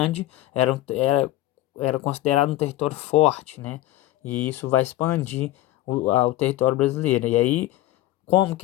era considerado um território forte, né? E isso vai expandir o território brasileiro. E aí, como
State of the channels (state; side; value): quieter; right; 15.9 dB